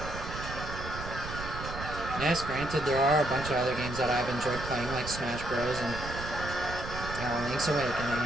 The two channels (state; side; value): noise; right; rumble, 8 dB below the sound